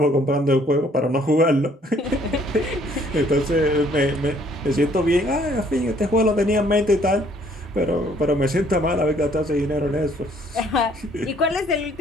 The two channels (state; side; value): normal; both; correlation 0.62